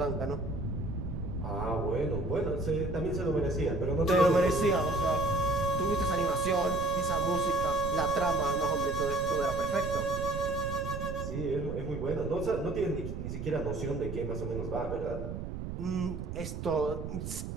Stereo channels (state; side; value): noise; right; rumble, 6 dB below the sound